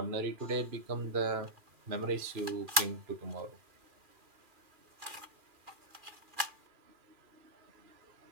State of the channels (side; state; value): left; late; 2.4 ms